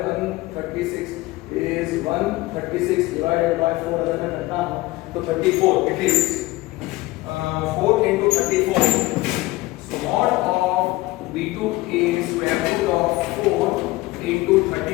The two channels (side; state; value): right; quieter; 19.8 dB